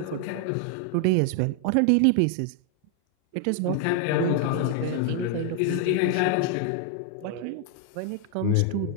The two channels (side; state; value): both; different; correlation 0.00